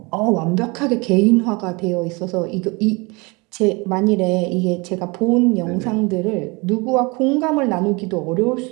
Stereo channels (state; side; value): quieter; left; 27.3 dB